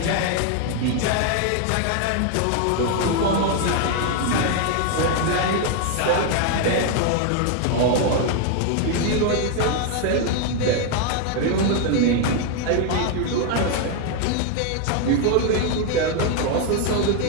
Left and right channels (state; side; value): different; both; correlation 0.01